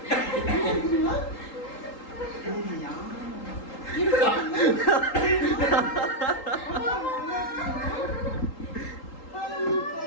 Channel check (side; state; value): right; late; 3.8 ms